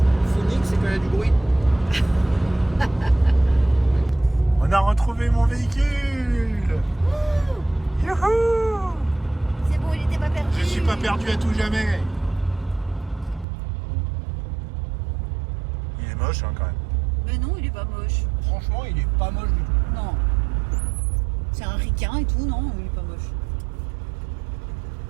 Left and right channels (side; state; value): left; drops out; at 13.5 s